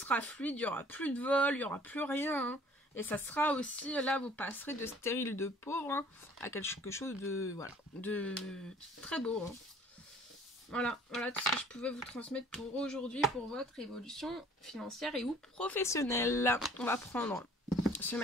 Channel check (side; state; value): both; normal; correlation 0.53